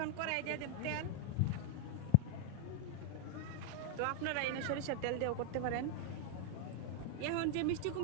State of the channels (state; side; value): different; both; correlation 0.00